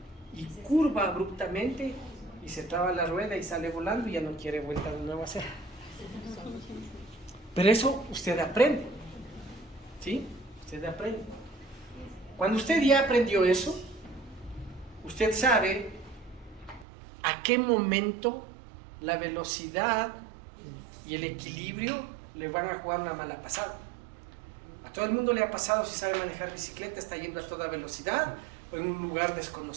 y curva abruptamente y se traba la rueda y sale volando y ya no quiere vuelta de nuevo a hacer. Pero eso usted aprende, ¿sí? Usted aprende. Cuando usted ya aprendió eso, usted sabe a qué momento la velocidad y el equilibrio le van a jugar una mala pasada. A todo el mundo le ha pasado, si sabe manejar bicicleta, está yendo a toda velocidad o en un lugar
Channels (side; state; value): left; drops out; at 16.9 s